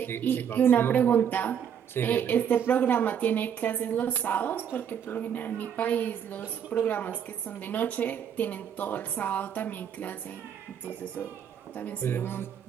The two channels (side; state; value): left; quieter; 8.4 dB